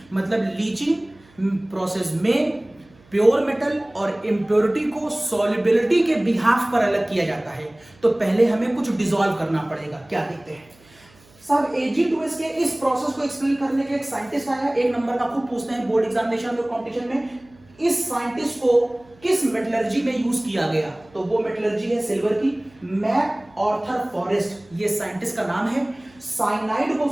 मतलब लीचिंग प्रोसेस में प्योर मेटल और इम्प्योरिटी को सॉल्युबिलिटी के बिहाफ पर अलग किया जाता है। तो पहले हमें कुछ डिसॉल्व करना पड़ेगा। क्या देखते हैं सब Ag2S के इस प्रोसेस को एक्सप्लेन करने के एक साइंटिस्ट आया, एक नंबर का खूब पूछते हैं बोर्ड एग्जामिनेशन और कंपटीशन में। इस साइंटिस्ट को किस मेटलर्जी में यूज किया गया? तो वो मेटलर्जी है सिल्वर की। मैक आर्थर फॉरेस्ट ये साइंटिस्ट का नाम है। साइनाइड को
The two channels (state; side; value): noise; right; hum, 29 dB below the sound